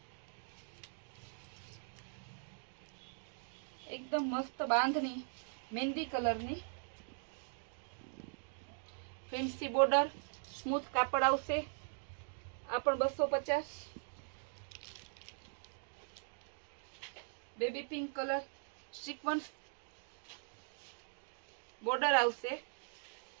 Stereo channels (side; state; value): left; silent; digital silence